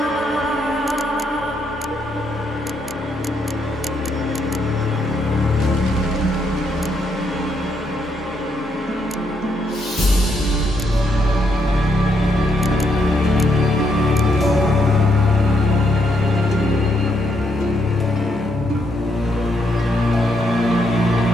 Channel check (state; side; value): normal; both; correlation 0.76